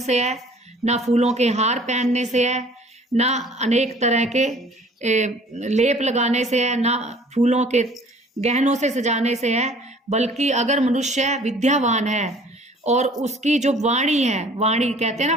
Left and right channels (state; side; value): normal; both; correlation 0.52